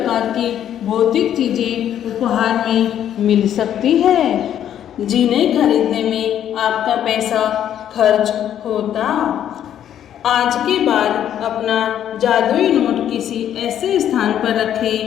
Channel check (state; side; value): quieter; right; 10.4 dB